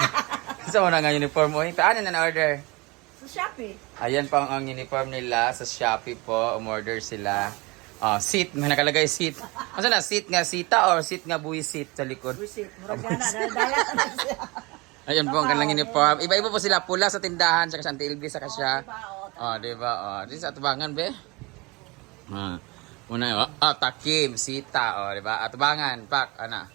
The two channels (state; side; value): quieter; left; 25.1 dB